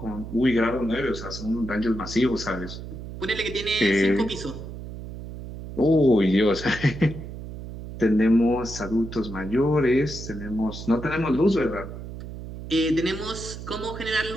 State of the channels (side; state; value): right; noise; hum, 10 dB below the sound